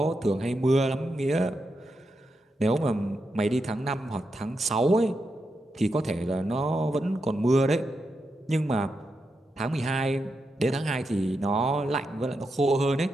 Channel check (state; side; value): normal; both; correlation 0.85